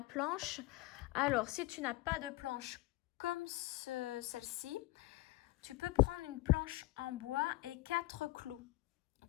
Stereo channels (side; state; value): right; quieter; 19.6 dB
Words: planche. Alors, si tu n'as pas de planche comme celle-ci, tu peux prendre une planche en bois et 4 clous